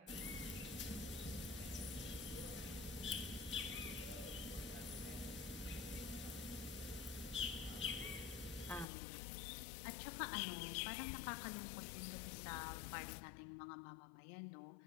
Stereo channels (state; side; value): drops out; right; at 8.8 s